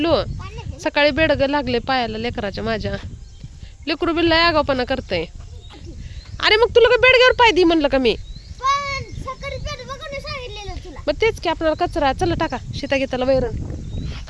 सकाळी बेडग लागले पायाला लेकराच्या माझ्या. लेकरू बिल्ला आगावपणा करतय. अरे मग तुला का बेडग्यावर पाय दी म्हणलं का मी? मग तेच की आपल्याला कचरा. चला टाका शेता घेताला वैरण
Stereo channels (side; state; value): both; identical; correlation 1.00